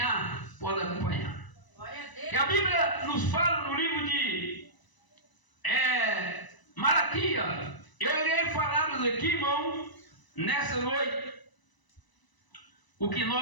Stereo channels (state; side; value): late; right; 1.0 ms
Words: pode acompanhar. Glória a Deus. E a Bíblia nos fala no livro de Malaquias. Eu irei falar aqui, irmão, nessa noite, o que